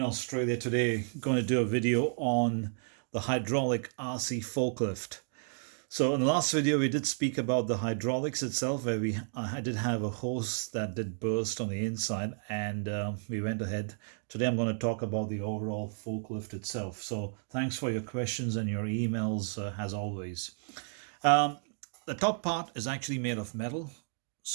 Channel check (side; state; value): left; silent; 56 dB below the other